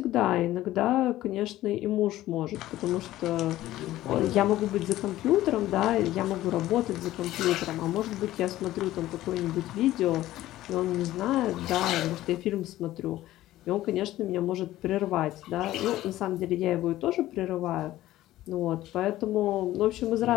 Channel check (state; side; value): quieter; right; 15.1 dB